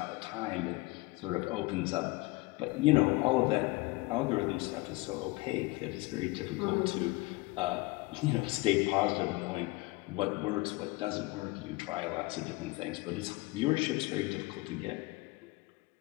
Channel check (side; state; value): right; quieter; 22.9 dB